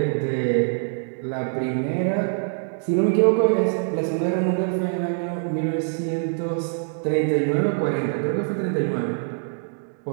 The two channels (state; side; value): silent; left; digital silence